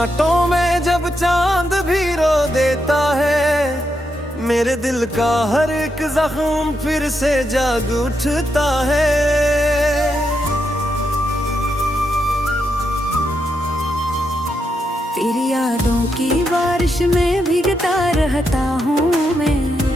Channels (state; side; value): normal; both; correlation 0.82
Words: में जब चांद भी रो देता है, मेरे दिल का हर एक जख्म फिर से जाग उठता है। तेरी यादों की बारिश में भीगता रहता हूँ मैं,